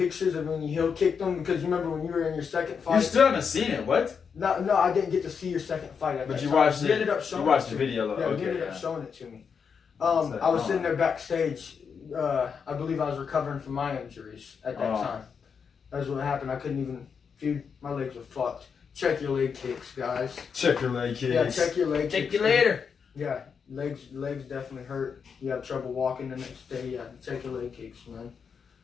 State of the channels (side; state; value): right; quieter; 6.3 dB